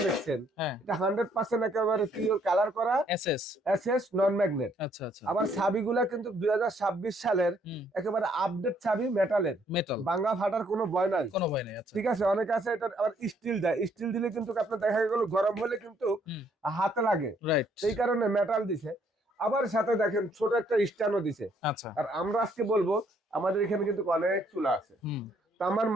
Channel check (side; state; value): both; normal; correlation 0.67